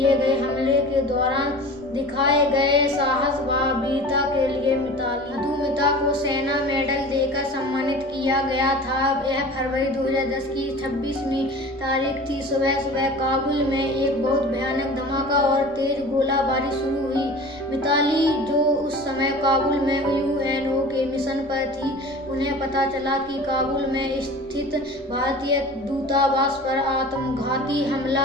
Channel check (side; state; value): both; normal; correlation 0.39